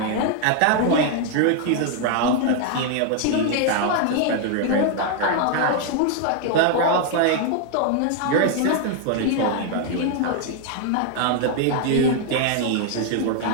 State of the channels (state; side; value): different; both; correlation 0.00